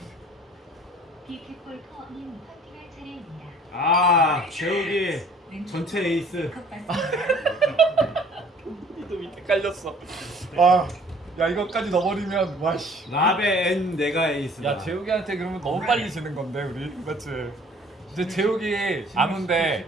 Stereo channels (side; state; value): both; normal; correlation 0.54